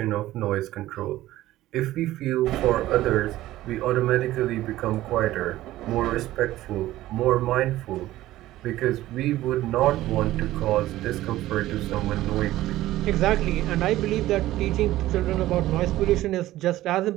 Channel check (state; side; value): quieter; left; 15.5 dB